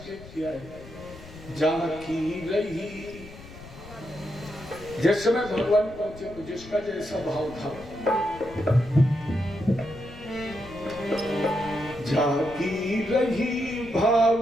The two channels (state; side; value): noise; left; rumble, 17 dB below the sound